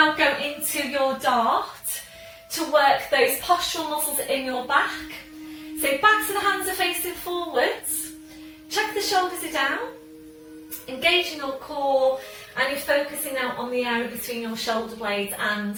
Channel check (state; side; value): identical; both; correlation 1.00